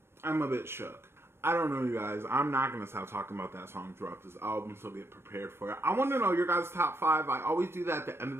a bit shook. I don't know, you guys. I'm not going to stop talking about that song throughout this album, so get prepared for it. I want to know your guys' top 5. I always do that at the end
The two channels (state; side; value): late; left; 0.12 ms